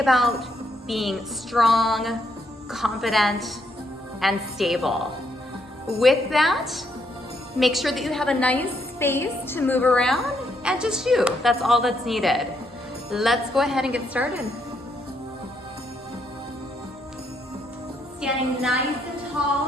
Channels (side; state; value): both; normal; correlation 0.75